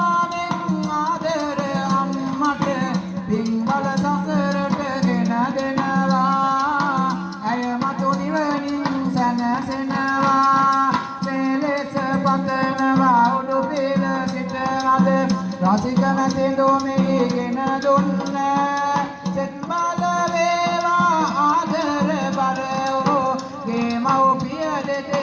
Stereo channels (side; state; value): both; identical; correlation 1.00